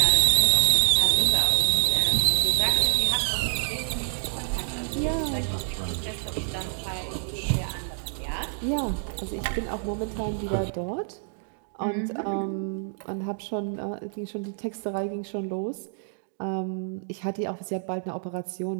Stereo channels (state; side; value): silent; left; digital silence